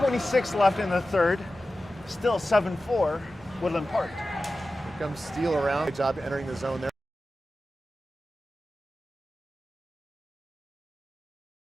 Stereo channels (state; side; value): normal; both; correlation 0.94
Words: left in the third. Still 7-4, Woodland Park. Here comes Steele around. Good job entering the zone there.